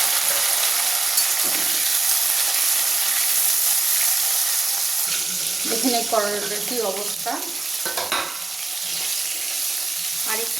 দেখুন এই করলাটার কী অবস্থা। আর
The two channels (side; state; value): left; quieter; 3.3 dB